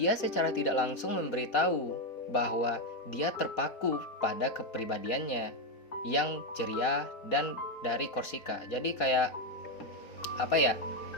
secara tidak langsung memberitahu bahwa dia terpaku pada kepribadiannya yang ceria dan dari Korsika. Jadi kayak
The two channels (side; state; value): right; late; 4.2 ms